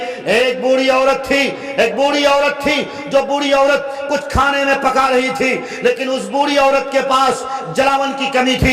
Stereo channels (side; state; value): both; identical; correlation 1.00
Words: ایک بوڑھی عورت تھی جو بوڑھی عورت کچھ کھانے میں پکا رہی تھی، لیکن اس بوڑھی عورت کے پاس جلاون کی کمی